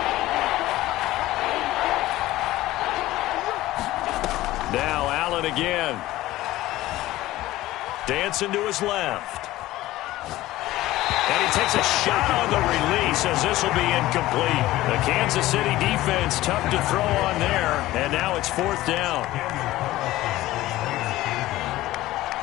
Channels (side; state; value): right; quieter; 16.5 dB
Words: Now Allen again. Dancing to his left. And he takes a shot on the release as this will be incomplete. The Kansas City defense tough to throw on there. And now it's fourth down.